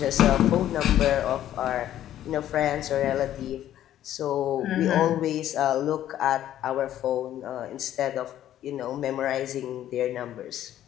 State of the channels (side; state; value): right; quieter; 12.0 dB